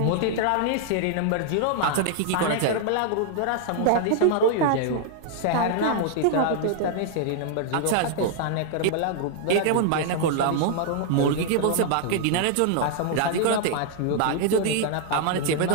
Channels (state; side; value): different; both; correlation 0.00